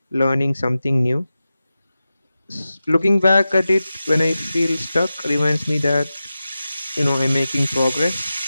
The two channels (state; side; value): inverted; both; correlation -0.93